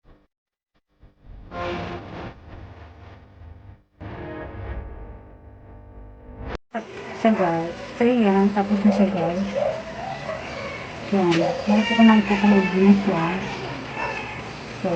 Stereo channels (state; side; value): identical; both; correlation 1.00